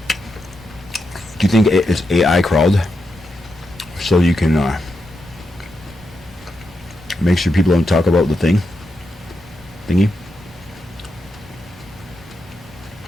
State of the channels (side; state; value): both; normal; correlation 0.85